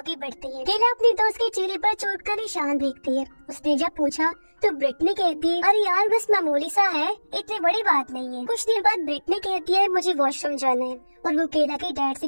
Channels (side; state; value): both; inverted; correlation -1.00